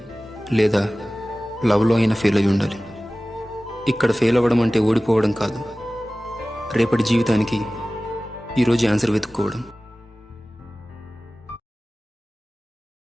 లేదా లవ్లో అయినా ఫెయిల్ అయి ఉండాలి. ఇక్కడ ఫెయిల్ అవ్వడం అంటే ఓడిపోవడం కాదు, రేపటి జీవితానికి ఈరోజు ఆన్సర్ వెతుక్కోవడం.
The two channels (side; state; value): both; normal; correlation 0.97